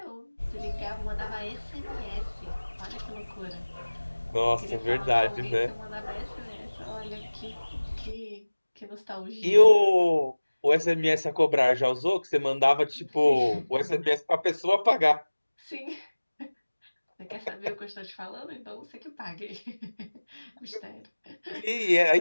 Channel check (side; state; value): both; inverted; correlation -1.00